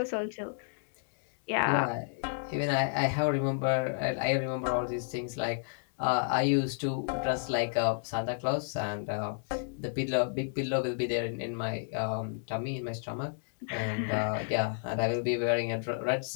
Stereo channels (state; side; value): silent; right; digital silence